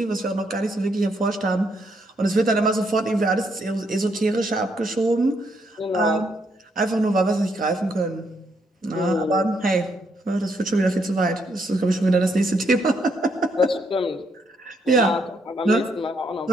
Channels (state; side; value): normal; both; correlation 0.75